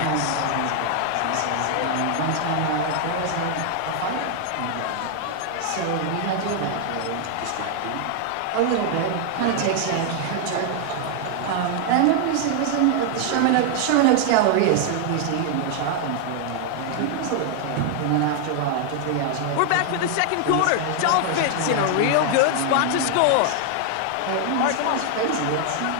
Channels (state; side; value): different; both; correlation 0.00